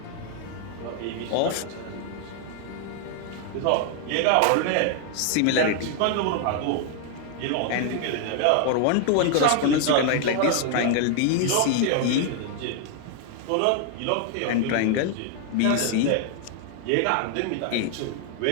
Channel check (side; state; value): both; different; correlation 0.00